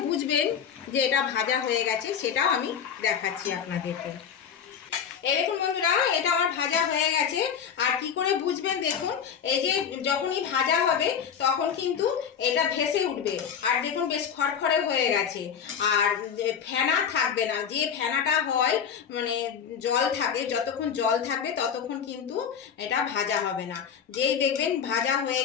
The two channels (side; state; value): right; quieter; 7.6 dB